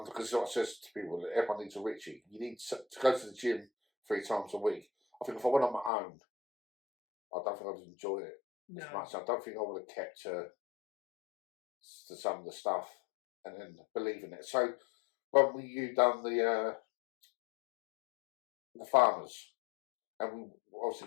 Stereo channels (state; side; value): drops out; right; at 5.9 s